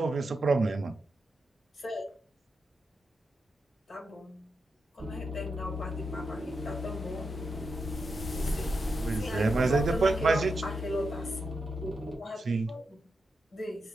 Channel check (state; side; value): normal; both; correlation 0.86